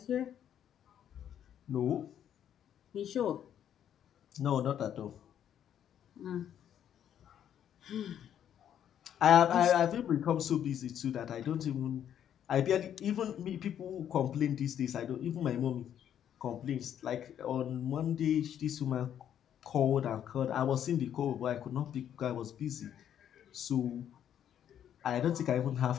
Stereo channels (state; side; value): quieter; right; 9.8 dB